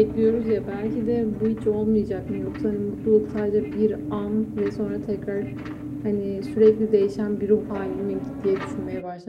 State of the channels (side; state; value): both; identical; correlation 1.00